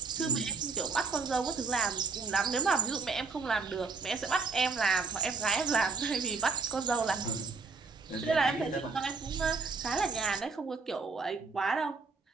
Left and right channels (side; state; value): left; quieter; 4.6 dB